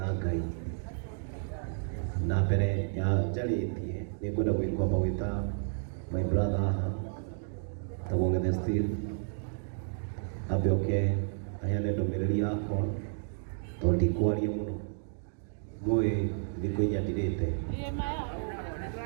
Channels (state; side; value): silent; left; digital silence